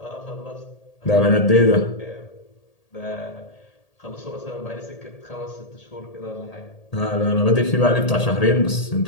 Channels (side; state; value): right; late; 1.8 ms